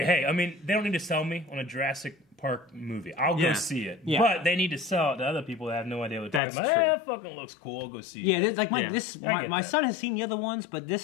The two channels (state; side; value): drops out; right; at 6.4 s